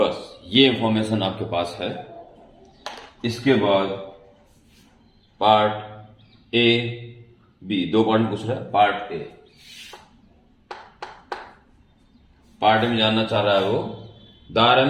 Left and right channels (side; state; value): both; identical; correlation 1.00